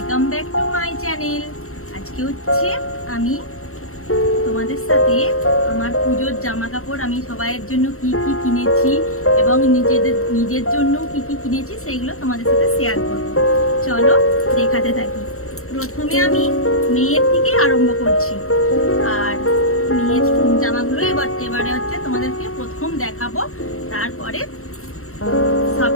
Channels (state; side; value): late; right; 0.63 ms